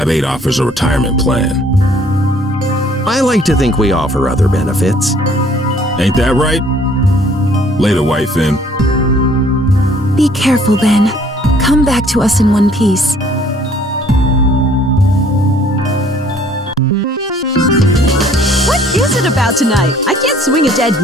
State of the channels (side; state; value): both; normal; correlation 0.59